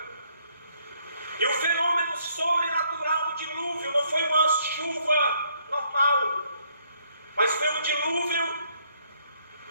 E o fenômeno sobrenatural do dilúvio não foi uma chuva normal, mas foi um dilúvio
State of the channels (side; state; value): both; inverted; correlation -0.69